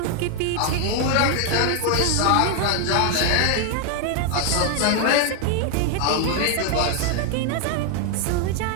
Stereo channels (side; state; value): both; different; correlation 0.00